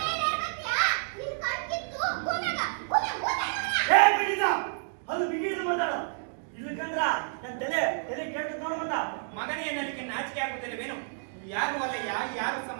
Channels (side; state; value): left; silent; digital silence